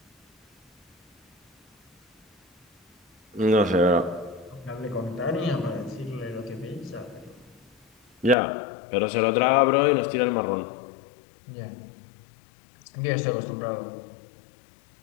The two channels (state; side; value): drops out; right; at 8.3 s